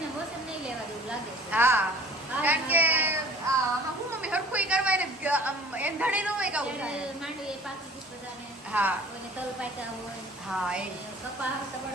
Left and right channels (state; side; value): normal; both; correlation 0.48